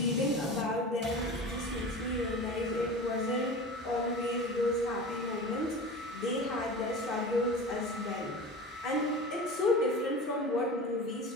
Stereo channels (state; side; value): normal; both; correlation 0.33